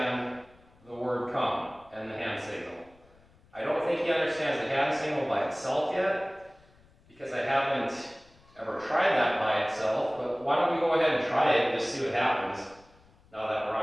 the word come and the hand signal. I don't think think he understands the hand signal by itself yet, because I haven't ever tried that by itself, but why don't we go ahead and try it and just see what happens now that we're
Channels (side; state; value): left; noise; rumble, 29 dB below the sound